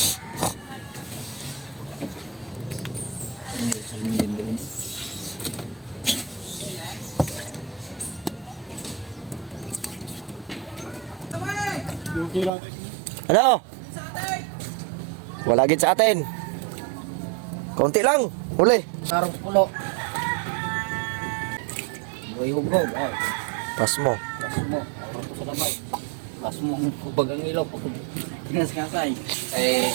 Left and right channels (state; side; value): drops out; left; at 12.5 s